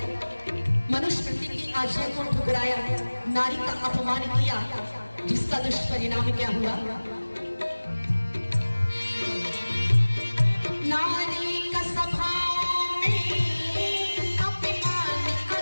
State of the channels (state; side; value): inverted; both; correlation -1.00